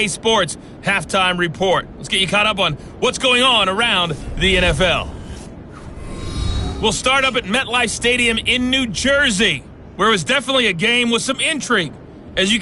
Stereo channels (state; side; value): identical; both; correlation 1.00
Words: Sports Halftime Report. Let's get you caught up on what's going on around the NFL. We'll start up at MetLife Stadium in New Jersey, where it was definitely a game with some intrigue, as you